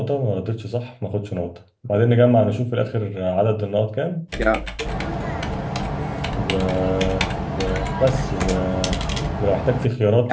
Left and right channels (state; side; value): identical; both; correlation 1.00